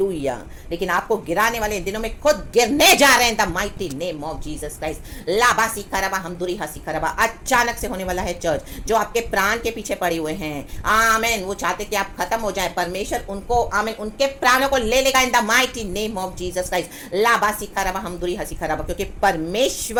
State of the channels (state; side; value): identical; both; correlation 1.00